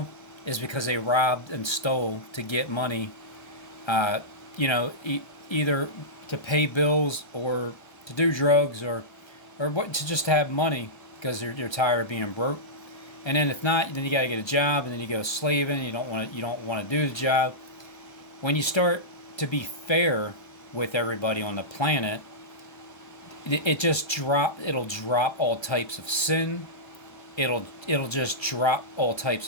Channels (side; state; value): right; late; 1.3 ms